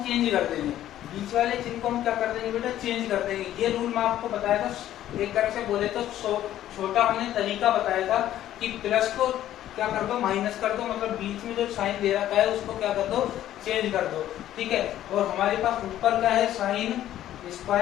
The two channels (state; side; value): quieter; right; 12.5 dB